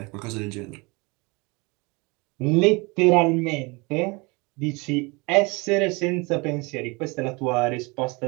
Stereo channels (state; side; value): quieter; left; 27.4 dB